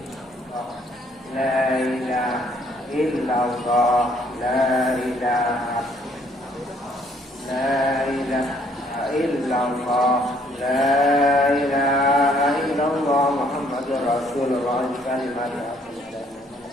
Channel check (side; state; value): both; normal; correlation 0.64